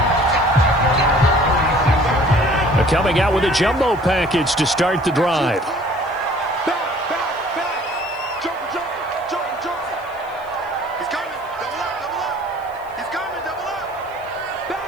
Coming out with a jumbo package to start the drive.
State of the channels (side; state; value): left; noise; hiss, 29 dB below the sound